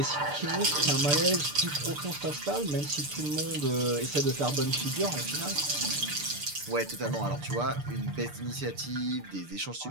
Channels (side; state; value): left; late; 6.8 ms